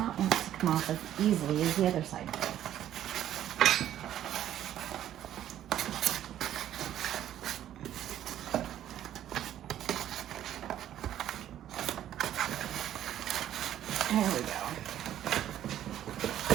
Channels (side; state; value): left; quieter; 11.6 dB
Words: want to come off as easily as the other side did. There we go.